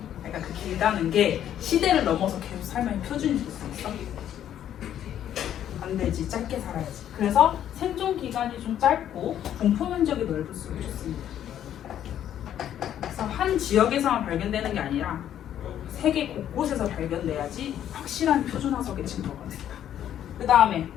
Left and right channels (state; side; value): quieter; right; 10.6 dB